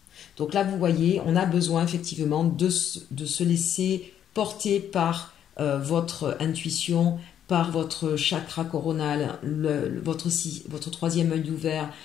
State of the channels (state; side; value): quieter; right; 9.8 dB